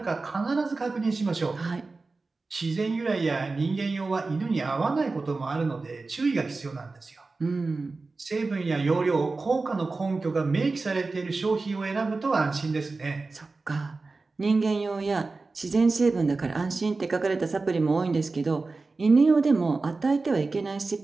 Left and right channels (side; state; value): left; quieter; 3.7 dB